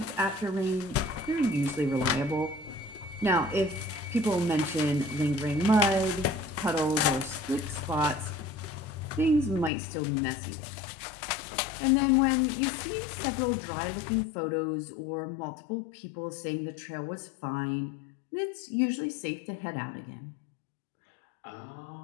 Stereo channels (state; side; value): drops out; right; at 9.7 s